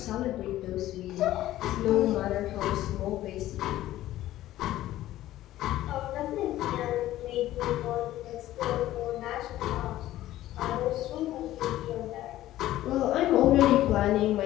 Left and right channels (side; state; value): right; quieter; 14.5 dB